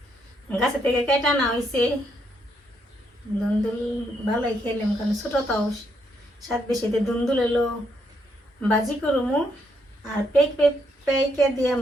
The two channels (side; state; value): both; normal; correlation 0.76